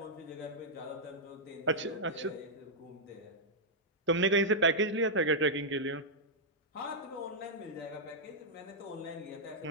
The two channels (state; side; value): normal; both; correlation -0.06